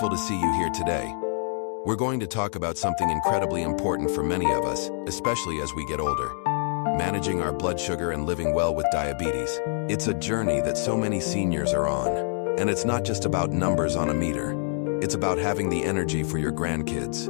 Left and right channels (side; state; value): right; silent; 61 dB below the other